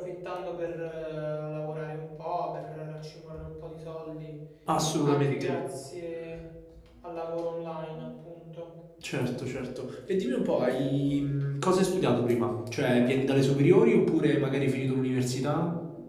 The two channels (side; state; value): both; identical; correlation 1.00